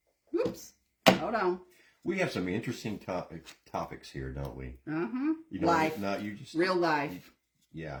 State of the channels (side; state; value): both; identical; correlation 1.00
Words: Whoops. Hold on. We have some interesting topics here, don't we? Uh-huh. You know, life. No, you just Real life.